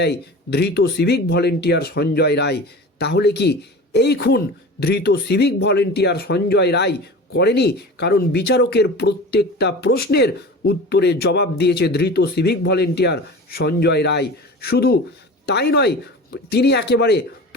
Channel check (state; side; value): normal; both; correlation 0.35